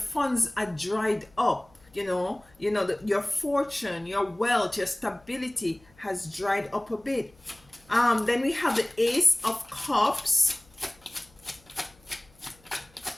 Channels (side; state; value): left; noise; hum, 29 dB below the sound